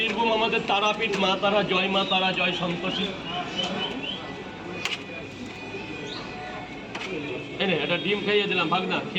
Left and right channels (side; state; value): both; identical; correlation 1.00